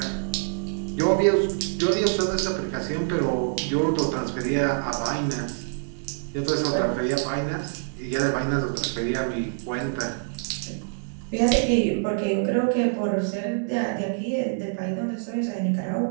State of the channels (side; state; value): left; silent; 61 dB below the other